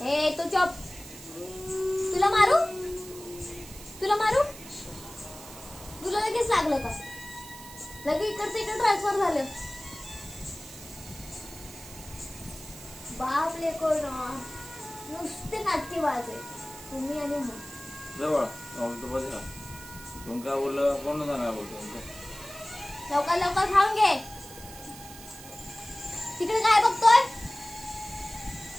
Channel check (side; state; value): right; noise; hiss, 16 dB below the sound